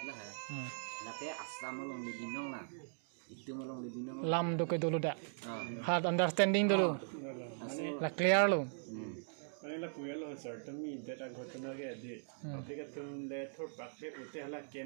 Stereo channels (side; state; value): left; silent; digital silence